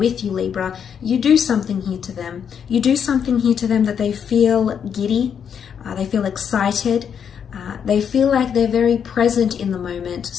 you, Libra. You do something here to them. You do something here to them that they feel giddy. They feel excited. They feel like they're very present in the moment.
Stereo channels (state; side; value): quieter; right; 7.7 dB